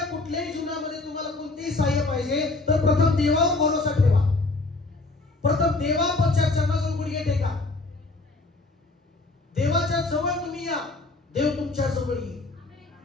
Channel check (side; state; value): right; quieter; 3.2 dB